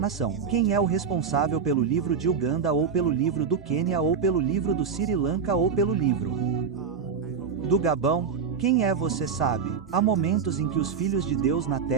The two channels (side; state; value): left; quieter; 6.2 dB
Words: Quem é o responsável pelo livro de Uganda ou pelo livro do Quênia ou pelo livro do Sri Lanka ou pelo livro do Gabão? Quem é você sabe? Há momentos em que os filhos de Deus na